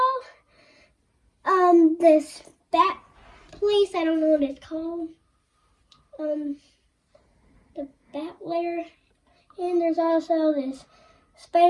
this Bat place, I don't know what it's called. The Bat layer. And there's also this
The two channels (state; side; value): identical; both; correlation 1.00